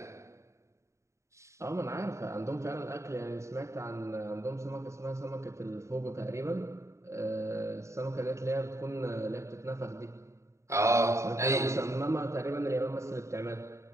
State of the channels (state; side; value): late; left; 0.14 ms